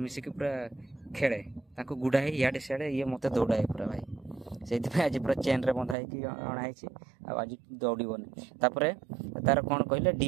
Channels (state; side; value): drops out; left; at 6.0 s